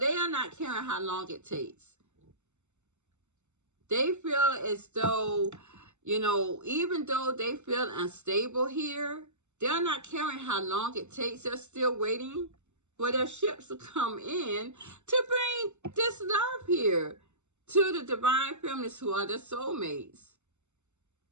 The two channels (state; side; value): late; left; 0.83 ms